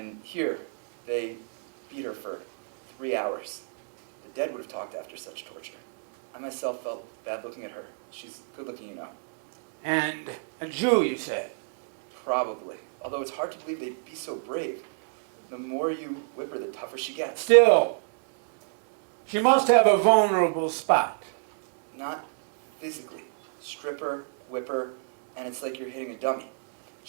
here, they beat her for 3 hours. The dead would have talked after such torture. I myself felt bad looking at her. She's good looking, you know. And a Jew, you said? Probably. Although it's hard to believe they'd be so brave. The more you whip her, the tougher she gets. Still, she must have a vulnerable spot. Not physically. Strip her, whip her, and it's like you're hitting a dummy.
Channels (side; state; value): left; silent; digital silence